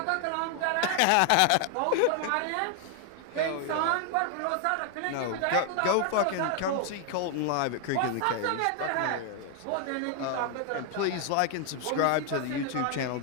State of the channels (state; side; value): different; both; correlation 0.00